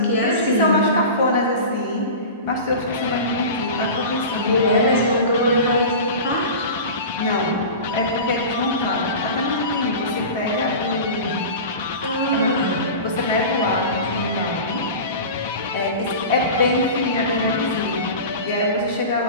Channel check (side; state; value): both; inverted; correlation -0.32